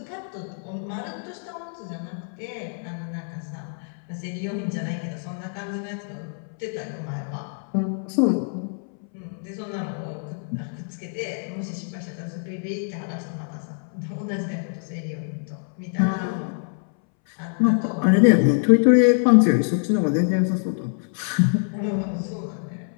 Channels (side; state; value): right; silent; 62 dB below the other